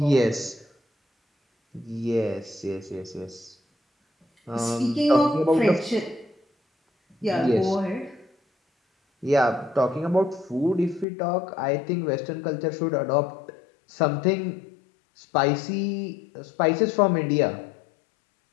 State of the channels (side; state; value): right; drops out; at 11.1 s